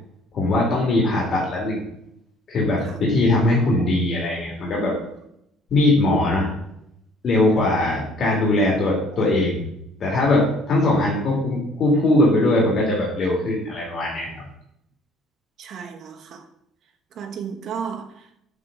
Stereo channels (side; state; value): both; normal; correlation 0.57